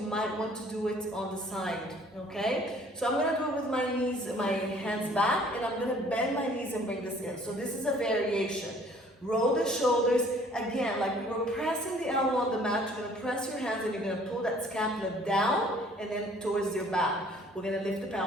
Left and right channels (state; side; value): normal; both; correlation 0.56